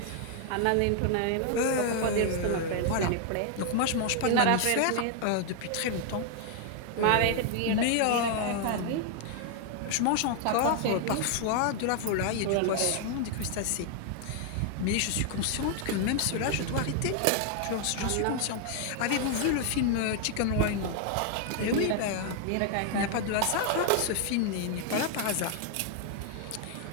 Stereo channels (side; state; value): both; different; correlation 0.00